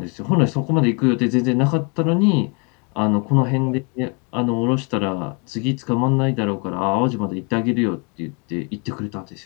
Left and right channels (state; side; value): quieter; right; 33.8 dB